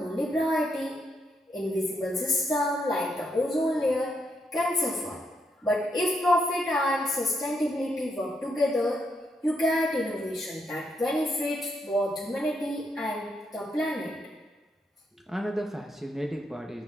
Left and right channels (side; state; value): both; normal; correlation 0.79